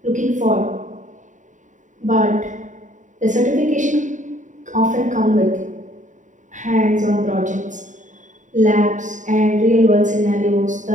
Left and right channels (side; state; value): left; late; 0.36 ms